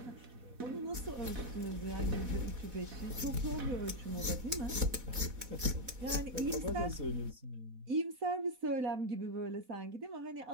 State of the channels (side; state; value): left; late; 4.1 ms